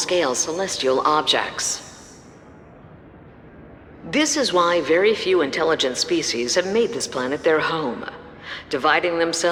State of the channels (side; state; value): both; identical; correlation 1.00